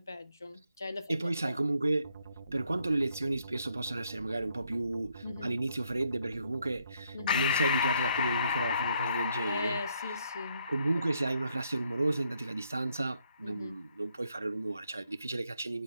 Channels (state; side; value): inverted; both; correlation -0.73